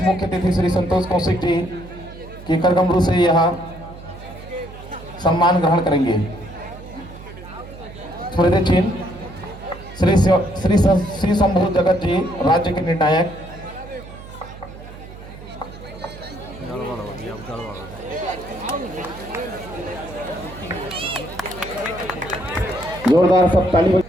मुख्य अतिथि श्री संतोष कौशिक जी की करगमरू से यहाँ सम्मान ग्रहण करेंगे। स्मृति चिन्ह श्री शंभू जगत जी राज्य के निर्णायक। जोरदार सब ताली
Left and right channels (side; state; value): right; noise; hum, 16 dB below the sound